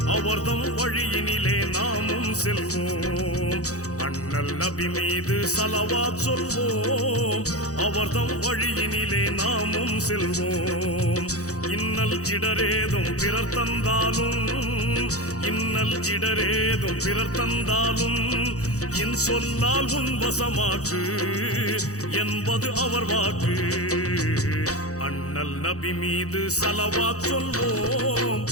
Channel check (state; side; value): late; right; 0.65 ms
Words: அவர்தம் வழியினிலே நாமும் செல்வோம். அண்ணல் நபி மீது ஸலவாத் சொல்வோம், அவர்தம் வழியினிலே நாமும் செல்வோம். இன்னல் இடரேதும் பிறர் தந்தாலும், இன்னல் இடரேதும் பிறர் தந்தாலும், என் சொல்லால் உன் வசமாக்கு என்பது அவர் வாக்கு. அண்ணல் நபி மீது ஸலவாத் சொல்வோம்,